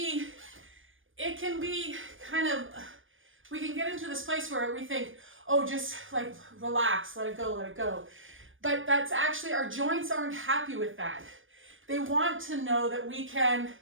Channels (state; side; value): late; left; 0.57 ms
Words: kind of, we can get into this place where we think, oh, just like relax, let it go. But that's actually, our joints aren't happy with that. They want to know that we can